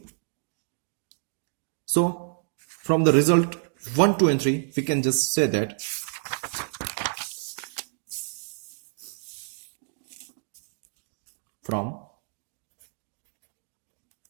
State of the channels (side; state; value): left; silent; digital silence